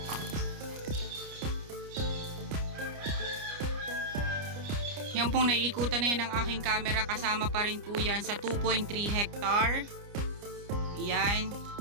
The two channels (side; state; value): left; late; 29 ms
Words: Yan pong naiikutan na yan ng aking camera, kasama pa rin po yan sa 2.3 hectare. Yan.